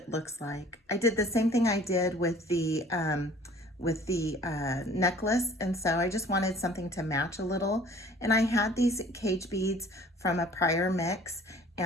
looks like. I did the same thing I did with the necklace, and so I just wanted something to match a little. And I had these cage beads from a prior mix,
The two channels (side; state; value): both; normal; correlation 0.51